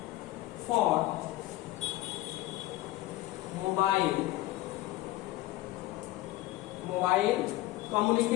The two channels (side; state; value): right; quieter; 17.0 dB